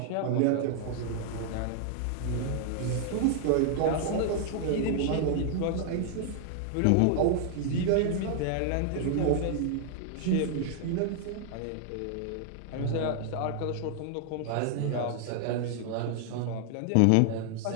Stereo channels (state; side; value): different; both; correlation 0.00